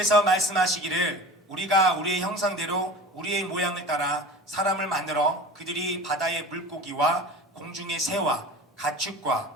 말씀하시기를 우리가 우리의 형상대로 우리의 모양을 따라 사람을 만들어 그들이 바다의 물고기와 공중의 새와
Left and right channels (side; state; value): both; normal; correlation 0.36